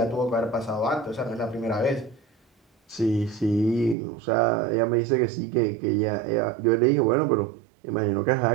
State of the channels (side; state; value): left; drops out; at 4.0 s